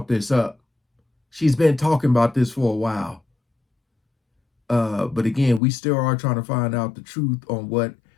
this up. She's been talking about this for a while. But again, we still are trying to find out the truth on what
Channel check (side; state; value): right; drops out; at 5.6 s